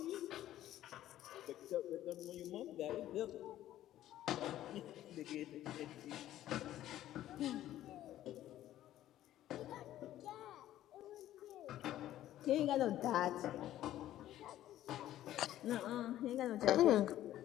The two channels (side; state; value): right; quieter; 13.2 dB